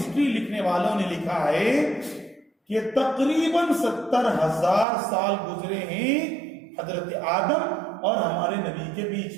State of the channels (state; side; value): drops out; left; at 4.9 s